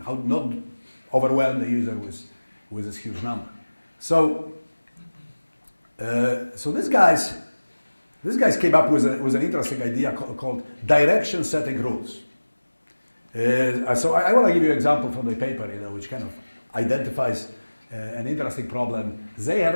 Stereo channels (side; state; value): both; inverted; correlation -1.00